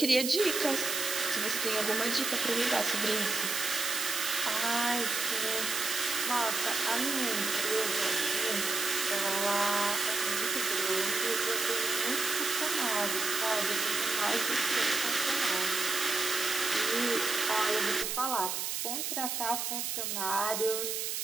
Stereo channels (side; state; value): right; noise; hiss, 2 dB below the sound